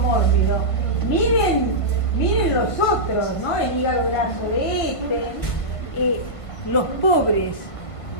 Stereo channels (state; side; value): late; right; 1.5 ms